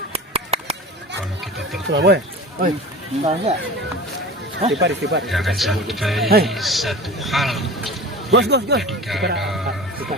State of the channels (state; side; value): normal; both; correlation 0.36